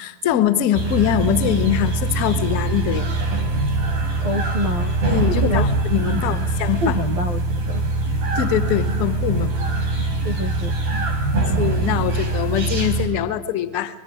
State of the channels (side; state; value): left; late; 12 ms